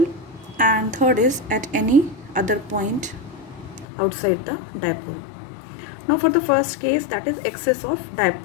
and third is at any other point outside the dipole. Now for the first case, that is axis of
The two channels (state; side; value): drops out; right; at 3.9 s